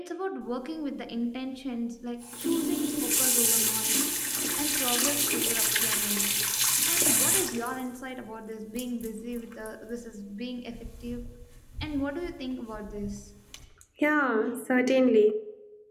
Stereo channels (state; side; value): identical; both; correlation 1.00